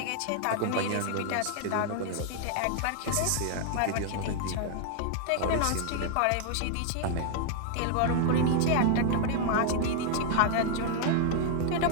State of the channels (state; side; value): different; both; correlation 0.00